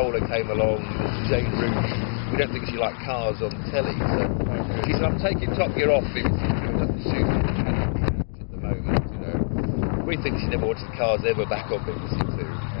came along, Jane Root. We don't think she liked cars on telly, so she said, I'm taking Top Gear off BBC Two, it doesn't suit at the moment, We think she never watched the cars ever back on BBC Two.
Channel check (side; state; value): right; silent; digital silence